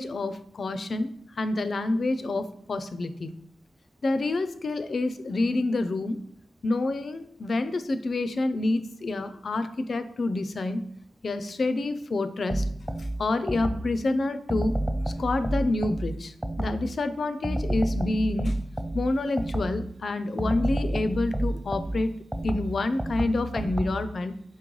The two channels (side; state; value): both; normal; correlation 0.94